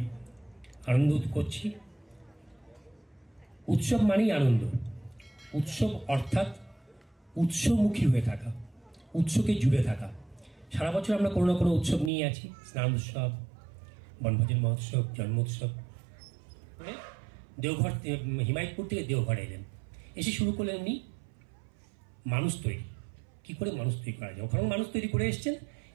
আনন্দ করছি। উৎসব মানেই আনন্দ। উৎসব অর্থাৎ উৎসমুখী হয়ে থাকা, উৎসকে জুড়ে থাকা। সারা বছর আমরা কোনো না কোনো উৎসব নিয়ে আছি, স্নান উৎসব, বনভোজন মহোৎসব, জন্মোৎসব। দেওঘর, হিমায়তপুর থেকে দেওঘর এলেন, এসে শুরু করলেন উনি মানুষ তৈরি। কি করে মানুষ তৈরি করা যায়, ওখানে মানুষ তৈরি করে এসছেন,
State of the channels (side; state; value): left; drops out; at 12.1 s